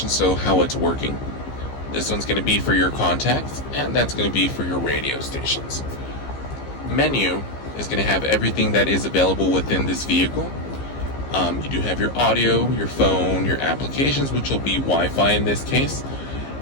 so how it's working. This one's going to be for your contacts, and that's going to be for your radio stations. Menu is going to have everything that is available within this vehicle. You do have your audio, your phone, your applications, which will be Wi-Fi in this case.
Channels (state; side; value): late; right; 15 ms